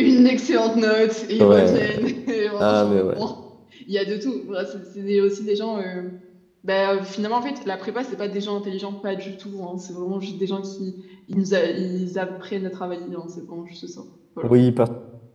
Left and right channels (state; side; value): identical; both; correlation 1.00